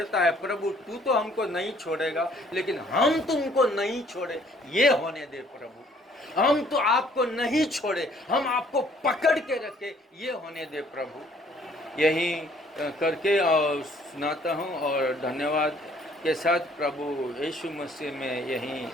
है, प्रभु तू तो हमको नहीं छोड़ेगा, लेकिन हम तुमको नहीं छोड़े, ये होने दे प्रभु। हम तो आपको नहीं छोड़े, हम आपको पकड़ के रखे, ये होने दे प्रभु। यही करके और सुनाता हूँ और धन्यवाद के साथ प्रभु यीशु मसीह में यहीं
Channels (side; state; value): both; normal; correlation 0.60